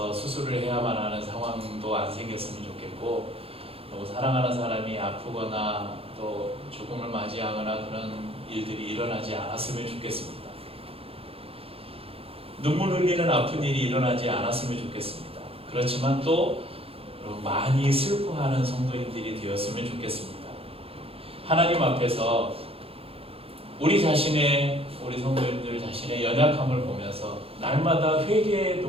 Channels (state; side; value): late; left; 0.28 ms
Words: 수술을 해야만 하는 상황도 안 생겼으면 좋겠고, 또 사랑하는 사람이 아프거나 또 죽음을 맞이하거나 그런 일들이 일어나지 않았으면 좋겠습니다. 눈물 흘리는 아픈 일이 일어나지 않았으면 좋겠습니다. 그렇지만 또 많이 슬퍼하는 성도님들이 되었으면 좋겠습니다. 하나님 앞에서 우리 성도님들 자신의 연약함을 보면서 날마다 회개의